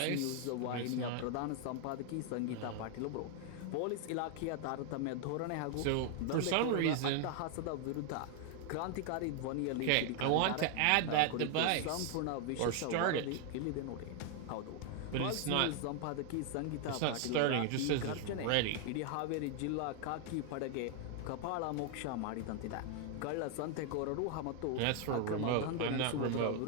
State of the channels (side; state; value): both; different; correlation 0.00